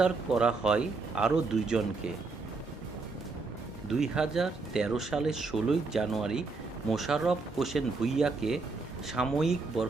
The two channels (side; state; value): left; quieter; 3.9 dB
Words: করা হয় আরও 2 জনকে। 2013 সালের 16 জানুয়ারি মোশাররফ হোসেন ভূঁইয়াকে সাময়িক